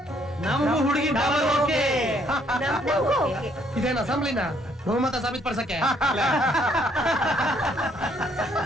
ನಮಗೂ ಹುಡುಗಿ ಡಬಲ್ ಓಕೆ. ಇದೇನ ಅಸೆಂಬ್ಲಿನ ಬಹುಮತ ಸಾಬೀತುಪಡಿಸಕ್ಕೆ?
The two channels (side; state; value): both; normal; correlation 0.67